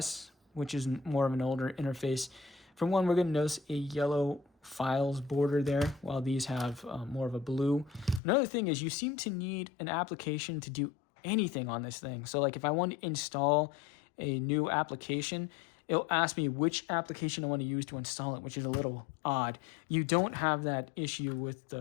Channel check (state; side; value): drops out; right; at 8.2 s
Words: which is more of an older interface, for one, we're going to notice a yellow files border there, while these have more of a blue. Another thing is you seem to need an application to do anything on this thing. So like if I want to install a new application, it'll ask me which application I want to use to install it, which is a little odd. You don't have that issue with